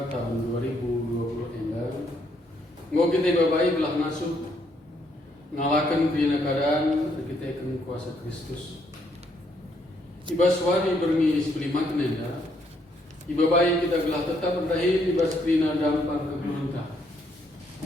tahun 2020 endah. Ngau kita babai belah ngasuh ngalakan krena keadaan kita akan kuasa Kristus. Ibas wari bermi sebelimat nenda. Ibabai kita gelah tetap berdahil ibas krena dampar kegelunta.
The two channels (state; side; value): normal; both; correlation 0.72